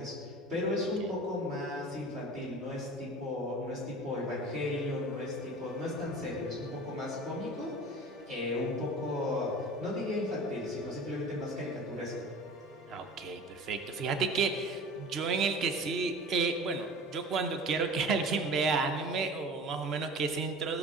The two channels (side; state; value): both; normal; correlation 0.40